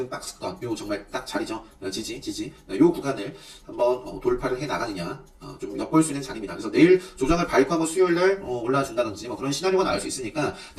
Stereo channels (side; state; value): both; identical; correlation 1.00